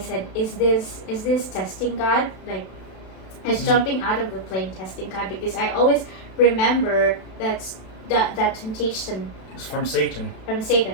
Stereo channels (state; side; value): late; right; 32 ms